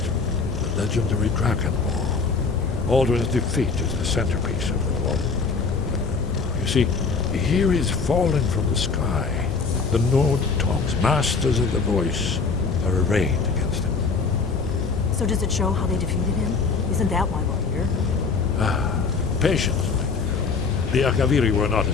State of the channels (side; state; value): right; quieter; 4.8 dB